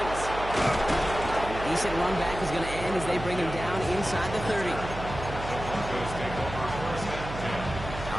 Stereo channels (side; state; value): right; noise; hum, 9 dB below the sound